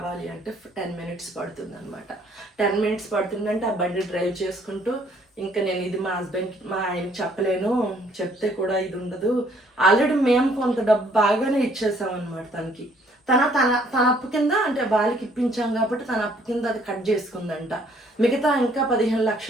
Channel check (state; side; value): normal; both; correlation 0.63